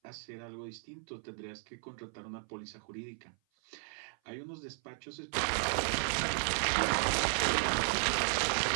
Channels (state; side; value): silent; left; 54 dB below the other